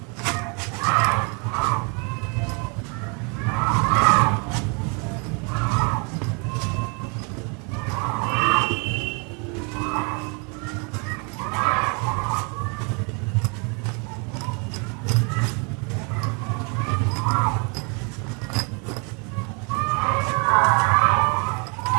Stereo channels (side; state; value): left; quieter; 33.7 dB